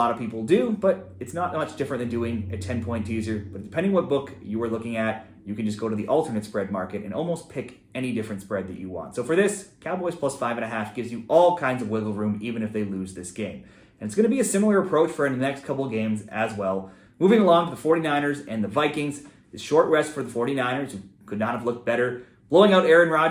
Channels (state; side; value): identical; both; correlation 1.00